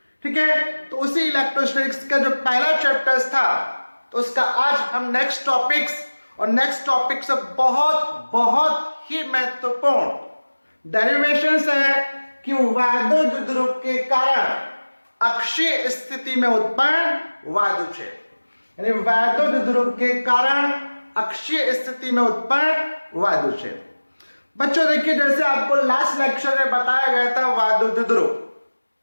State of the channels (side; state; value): both; inverted; correlation -1.00